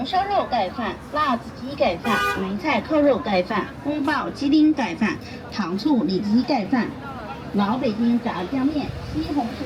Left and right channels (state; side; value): identical; both; correlation 1.00